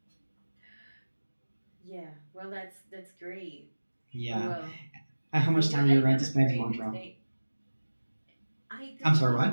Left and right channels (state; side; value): inverted; both; correlation -1.00